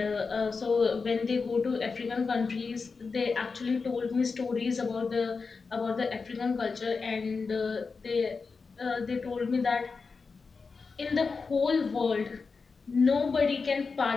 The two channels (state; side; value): quieter; right; 4.7 dB